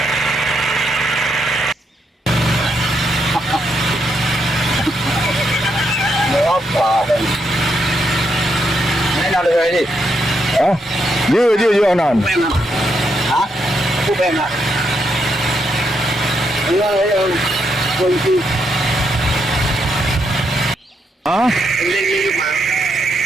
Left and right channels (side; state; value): both; normal; correlation 0.79